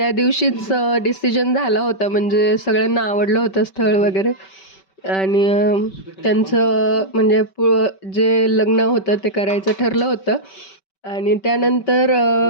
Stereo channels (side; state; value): right; late; 5.2 ms